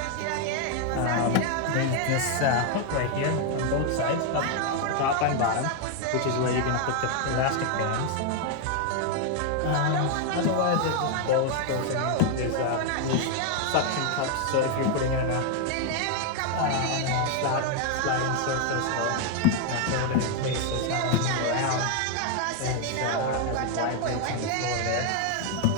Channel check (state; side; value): different; both; correlation 0.01